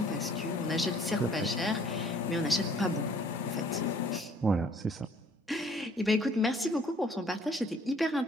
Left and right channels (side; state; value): both; normal; correlation 0.58